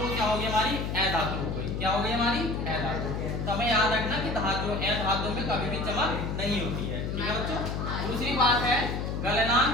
क्या होगी, हमारी अधातु हो गई। क्या हो गई हमारी? अधातु। तो हमें याद रखना कि धातु अधातु में कभी भी चमक नहीं होती है, ठीक है बच्चों। दूसरी बात है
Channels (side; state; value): left; noise; hum, 3 dB below the sound